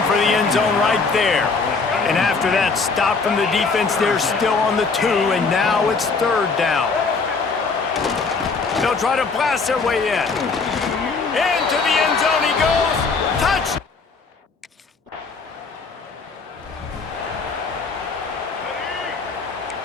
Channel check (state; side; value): quieter; right; 4.5 dB